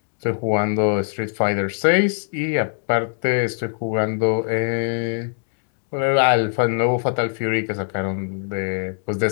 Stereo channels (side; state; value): right; silent; digital silence